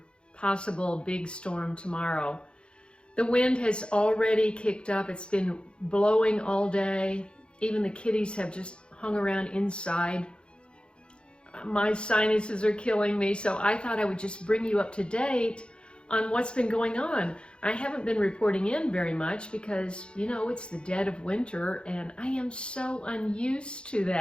possible big storm tomorrow. The wind has already kicked up. It's been blowing all day. Even the kitties have just hung around inside. My sinuses are killing me, so I thought I would just bring you up to date on what's been going on. I haven't been reporting in very much because, you know, it's the dead of winter and I am so unused to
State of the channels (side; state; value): right; late; 0.055 ms